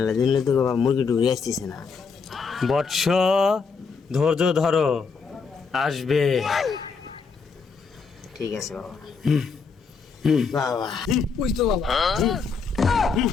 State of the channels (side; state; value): right; quieter; 5.2 dB